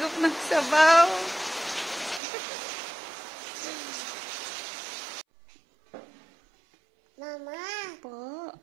ng sabaw. Mama. Po.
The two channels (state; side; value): drops out; left; at 2.2 s